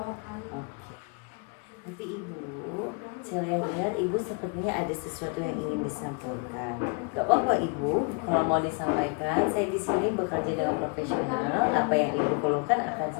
Oke. Tapi Ibu, saya lihat Ibu sepertinya ada sesuatu yang ingin disampaikan. Gak apa-apa Ibu, kalau mau disampaikan, saya di sini bekerja dengan profesional. Apa yang Ibu keluhkan akan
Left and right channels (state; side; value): quieter; right; 34.3 dB